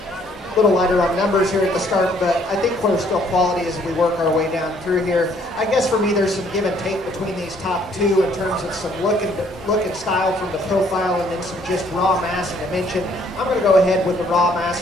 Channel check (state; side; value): normal; both; correlation 0.64